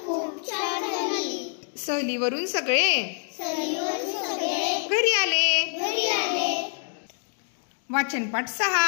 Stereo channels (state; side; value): silent; right; 59 dB below the other